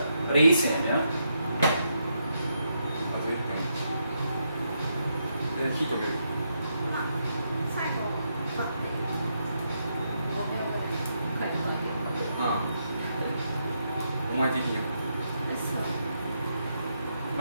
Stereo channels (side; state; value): both; inverted; correlation -0.80